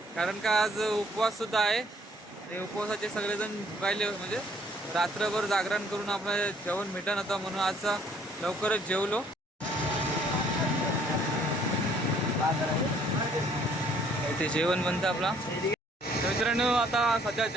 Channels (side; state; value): both; normal; correlation 0.62